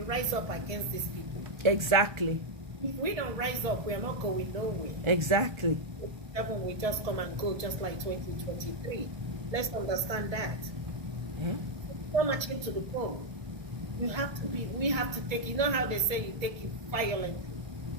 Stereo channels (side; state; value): left; late; 1.2 ms